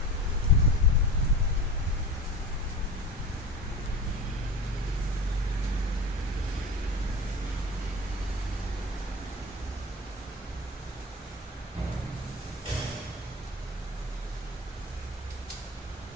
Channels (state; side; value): normal; both; correlation 0.31